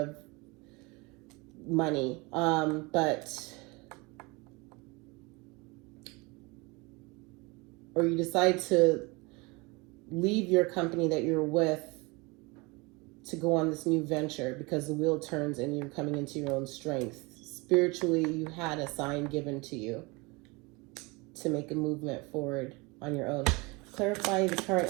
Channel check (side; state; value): left; quieter; 26.3 dB